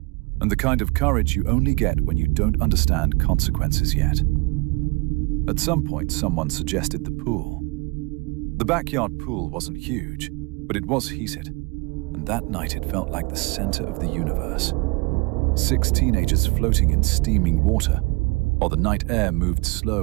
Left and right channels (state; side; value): quieter; left; 26.8 dB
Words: and the kind of courage you only get when you don't understand consequences yet. At some point, someone suggested the pool. The backyard pool wasn't huge, but it was heated, and that night it felt like the center of the universe. 6 teenagers floating in steaming water, while the night air moved